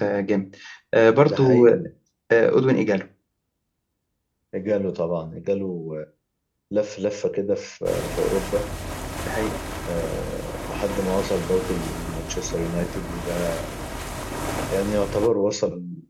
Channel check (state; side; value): identical; both; correlation 1.00